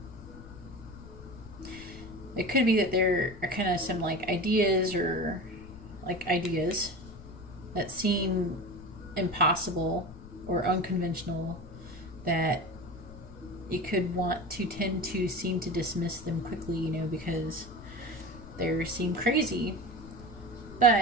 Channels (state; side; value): noise; left; rumble, 16 dB below the sound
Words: It could be that there are kind of some ideas that seem impossible or unconventional, that you could want to tend to seem to dismiss them quickly, because they seem crazy,